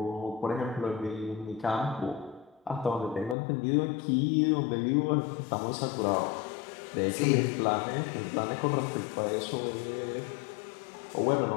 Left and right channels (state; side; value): drops out; right; at 3.4 s